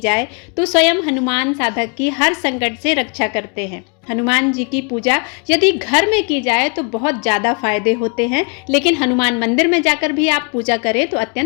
तो स्वयं हनुमान साधक की हर संकट से रक्षा करते हैं। हनुमान जी की पूजा यदि घर में की जाए तो बहुत ज़्यादा फायदे होते हैं, लेकिन हनुमान मंदिर में जाकर भी आप पूजा करें तो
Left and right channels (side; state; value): right; quieter; 37.3 dB